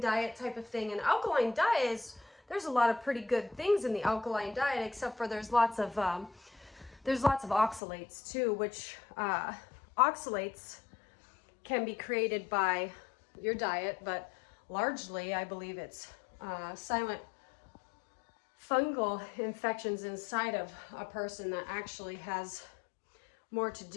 diet type of thing, and alkaline diet is, there's a lot of pretty good things in the alkaline diet, except for there's lots of oxalates too, which oxalates can be created by your diet, but largely I believe it's silent fungal infections inside of a person that actually has more to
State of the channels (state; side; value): drops out; right; at 7.8 s